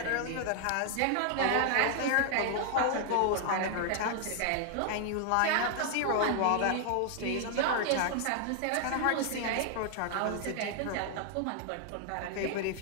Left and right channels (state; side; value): different; both; correlation 0.00